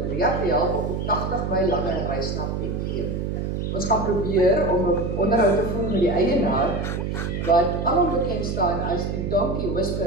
te help op die 80 myl lange reis na Bethlehem. Ons gaan probeer om 'n onderhoud te voer met die eienaar, wat alom bekend staan as die donkie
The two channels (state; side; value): noise; right; hum, 2 dB below the sound